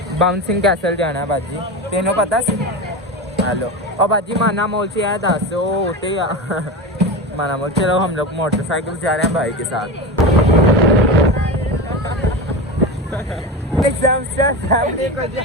बाउंसिंग कैसल जाना बाजी, तेनों पता सी? हेलो और बाजी माना मॉल से आया दस होते माना मॉल। चलो हम लोग मोटरसाइकिल जा रहे हैं भाई के साथ।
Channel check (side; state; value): both; normal; correlation 0.23